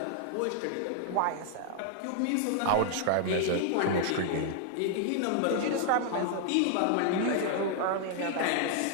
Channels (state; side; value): different; both; correlation -0.01